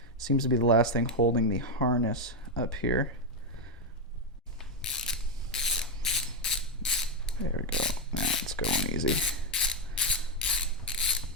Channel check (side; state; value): both; normal; correlation 0.03